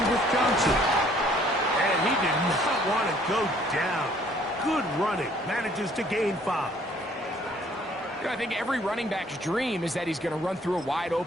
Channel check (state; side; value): normal; both; correlation 0.60